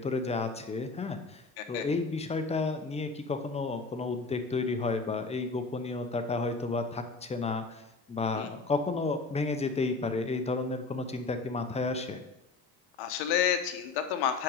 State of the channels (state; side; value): quieter; right; 4.1 dB